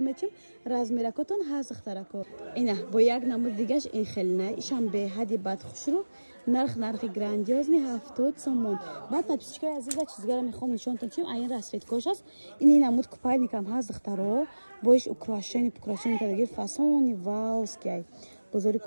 медиҳем. Размеракотон ҳаст духтарако. Ина бо як намуд дигаш ин хеле не ишам беҳади бад хушру нархи грандиозни 70 сомон. Баъд подписчикои азиза чизгара мехоҳам нишонтон чим айн расветкош аст. Ин намуд купальникам ҳаст духтаро. Боиш украшение кадаги фасони ваускай. Бозори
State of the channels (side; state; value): both; inverted; correlation -1.00